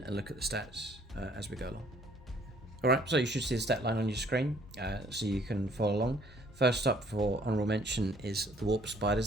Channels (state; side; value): normal; both; correlation 0.60